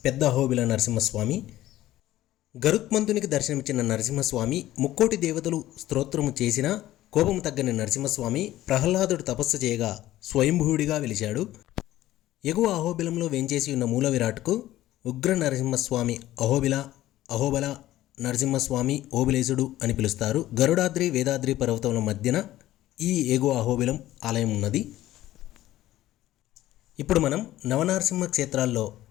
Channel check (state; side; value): quieter; right; 14.8 dB